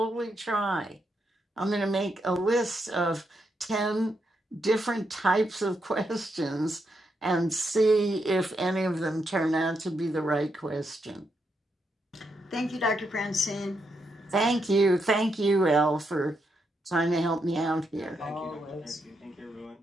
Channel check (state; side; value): normal; both; correlation 0.81